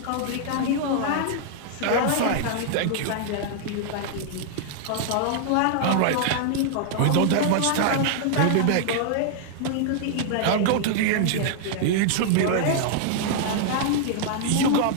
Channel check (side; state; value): both; different; correlation -0.01